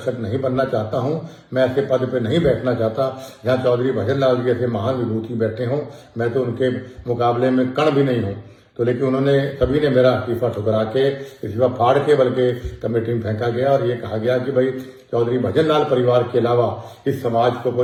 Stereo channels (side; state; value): both; identical; correlation 1.00